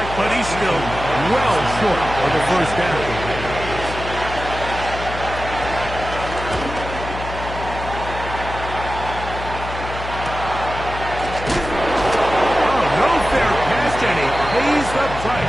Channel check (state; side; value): noise; left; hum, 9 dB below the sound